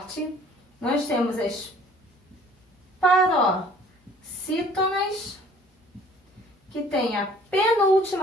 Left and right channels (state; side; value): normal; both; correlation 0.54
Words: Nós temos as paroxítonas, que tem a